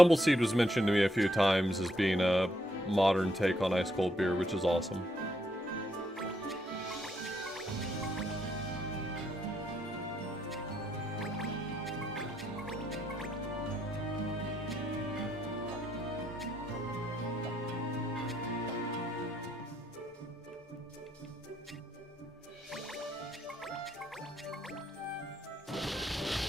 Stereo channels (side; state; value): both; normal; correlation 0.75